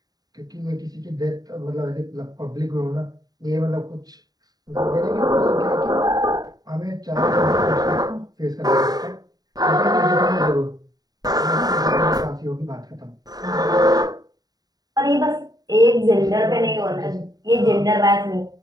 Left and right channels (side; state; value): left; late; 0.18 ms